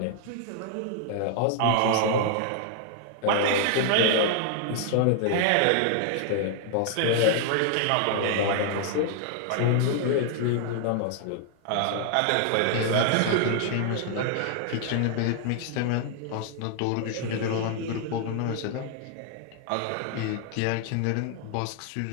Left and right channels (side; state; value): both; different; correlation 0.00